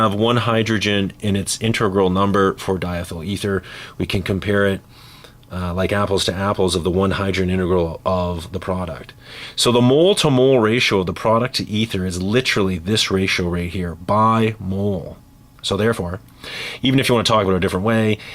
1 hydrogen in its integral number for diethyl ether, we can compare it like apples to apples of the 1 hydrogen integral of the product. So the mole-to-mole ratio of the product to ether is literally this ratio right here, by mole. So therefore, even if you want to talk about it a different way,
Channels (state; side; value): identical; both; correlation 1.00